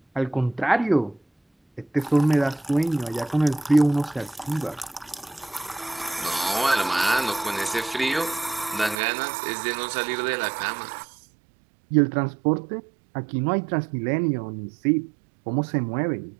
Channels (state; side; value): drops out; left; at 9.0 s